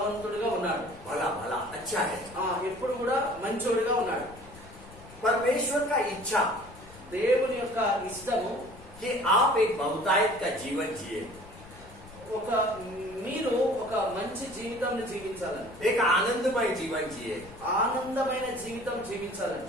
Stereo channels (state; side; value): noise; left; rumble, 19 dB below the sound